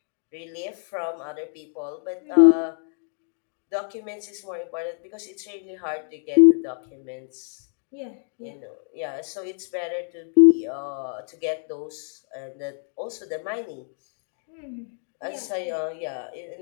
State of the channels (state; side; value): silent; right; 61 dB below the other